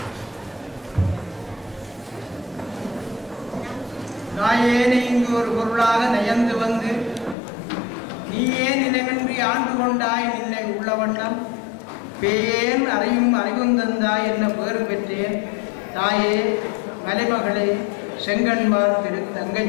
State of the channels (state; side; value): drops out; right; at 7.4 s